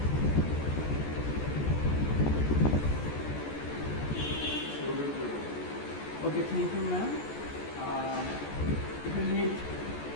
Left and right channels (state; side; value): late; right; 14 ms